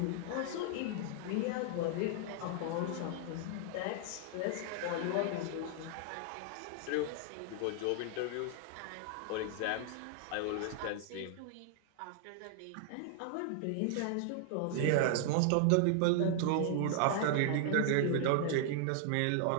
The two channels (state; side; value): different; both; correlation -0.01